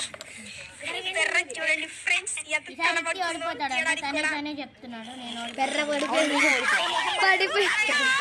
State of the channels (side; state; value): both; identical; correlation 1.00